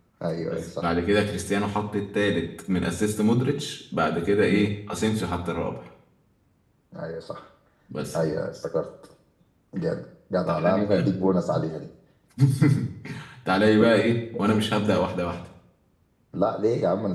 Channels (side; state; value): both; identical; correlation 1.00